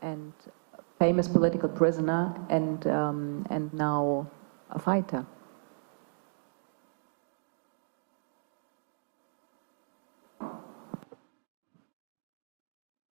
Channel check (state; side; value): silent; left; digital silence